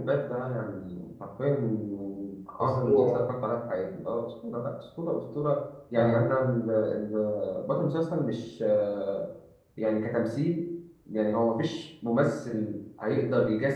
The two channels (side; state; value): both; identical; correlation 1.00